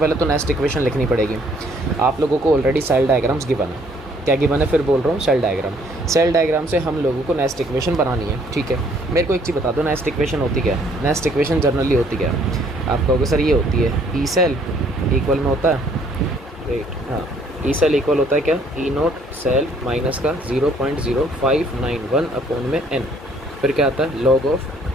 तो नेक्स्ट इक्वेशन लिखनी पड़ेगी। आप लोगों को ऑलरेडी सेल डायग्राम्स गिवन है। क्या गिवन है? फिर बोल रहा हूँ, सेल डायग्राम। सेल डायग्राम से हम लोगों को नेक्स्ट इक्वेशन बनानी है। ठीक है, मेरे को एक चीज़ बता दो, नेक्स्ट इक्वेशन होती क्या है? नेक्स्ट इक्वेशन जनरली होती क्या है? आप कहोगे सर ये होती है ई सेल इक्वल में होता है, वेट, हाँ, ई सेल इक्वल होता है क्या? ई नोट सेल माइनस का 0.0591 अपॉन में एन। फिर क्या आता है? लॉग ऑफ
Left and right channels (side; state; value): both; normal; correlation 0.62